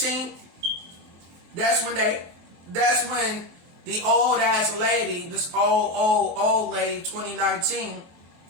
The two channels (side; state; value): left; late; 23 ms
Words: that's when the old ass lady, this old lady, 2019,